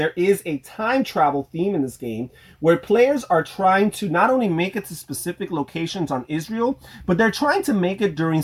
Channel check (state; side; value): identical; both; correlation 1.00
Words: is a time travel theme in this game where players are trying to not only make it to specific locations on Israel, but they're trying to make it during